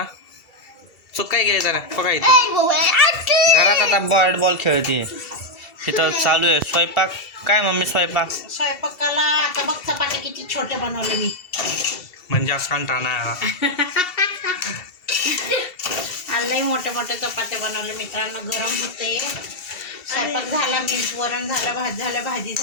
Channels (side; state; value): right; late; 2.7 ms